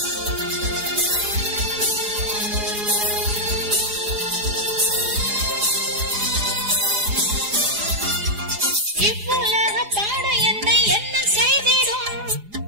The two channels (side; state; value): left; late; 4.8 ms